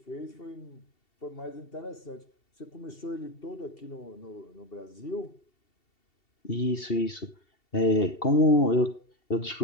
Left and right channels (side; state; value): right; late; 2.7 ms